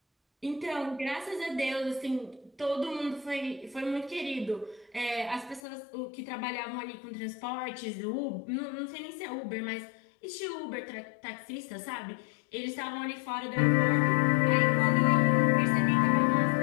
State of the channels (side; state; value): right; drops out; at 5.6 s